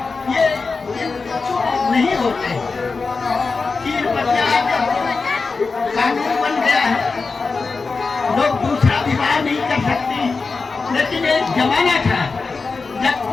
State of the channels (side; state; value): right; quieter; 4.3 dB